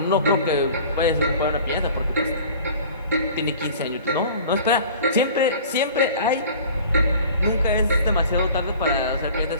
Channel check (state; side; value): inverted; both; correlation -0.45